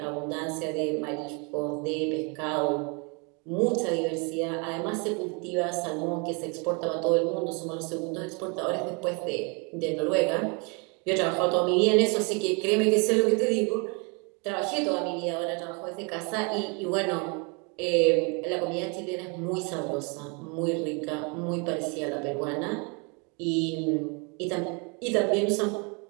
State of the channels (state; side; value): quieter; left; 33.3 dB